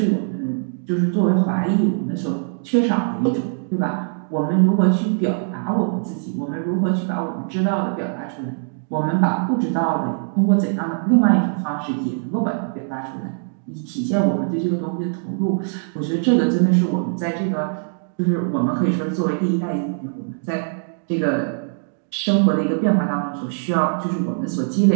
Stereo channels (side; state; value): left; silent; 65 dB below the other